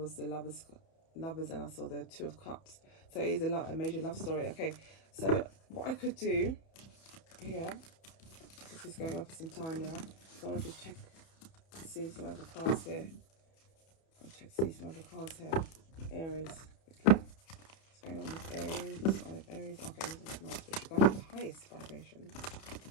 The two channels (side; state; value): right; late; 31 ms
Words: the lovers, and I saw the Two of Cups. So it is a major love story. Okay, so what I could do here, this is going on for some time now. So I'll just check to see some other cards here. I'll check to see some other cards here. Aries. Okay. What's going on with Aries? The sign of Aries. Okay, this is nice, but you're going to the highest vibration.